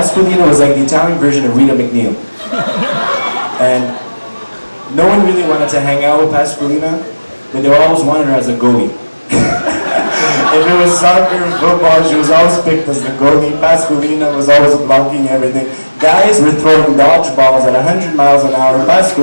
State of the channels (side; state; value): both; inverted; correlation -1.00